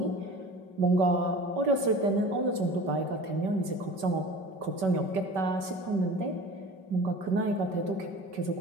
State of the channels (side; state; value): left; late; 5.2 ms